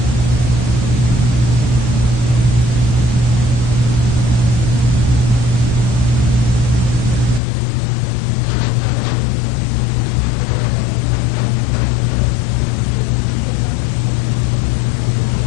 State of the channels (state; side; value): drops out; right; at 7.4 s